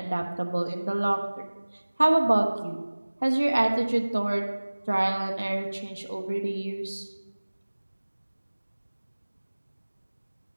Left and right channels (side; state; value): both; inverted; correlation -1.00